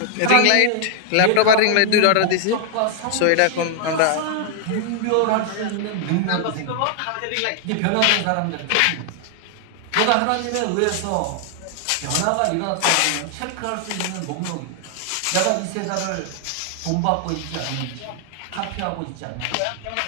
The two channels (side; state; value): both; different; correlation 0.00